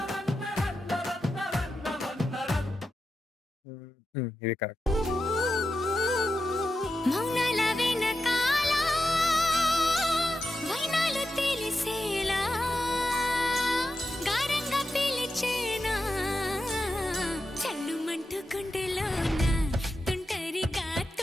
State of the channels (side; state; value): both; normal; correlation 0.90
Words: ఇది కరెక్ట్. మౌనాల వెనకాల వైనాలు తెలిసేలా గారంగా పిలిచేనా చల్లుమంటూ గుండెలోన తుంటరిగా